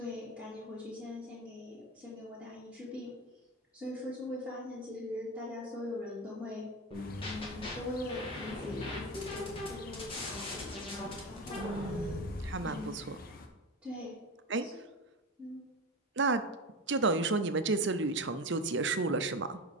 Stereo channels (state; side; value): normal; both; correlation 0.22